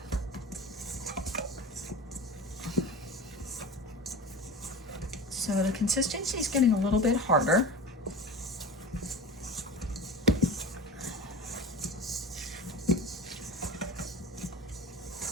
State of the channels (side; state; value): both; normal; correlation 0.33